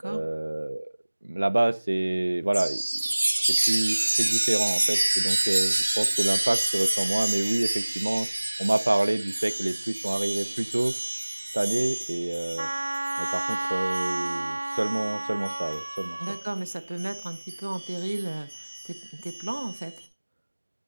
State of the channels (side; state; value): both; inverted; correlation -1.00